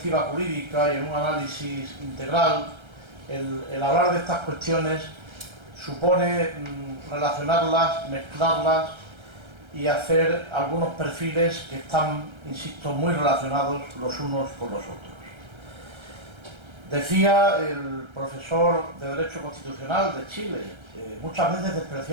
jurídica y en un análisis integral el hablar de estas cuestiones supone relacionarlas, mezclarlas y hacer algunos perfiles que están, insisto, muy relacionados los unos con los otros. Decía el profesor de Derecho Constitucional de Chile, muchas veces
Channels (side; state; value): left; late; 1.3 ms